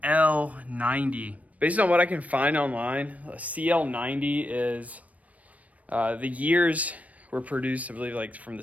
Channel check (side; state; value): left; late; 0.069 ms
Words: Based on what I can find online, a CL90 is, the years were produced, I believe, like from